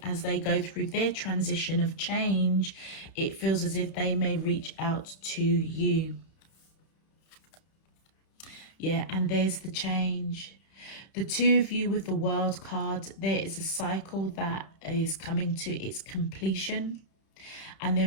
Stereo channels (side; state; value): right; late; 31 ms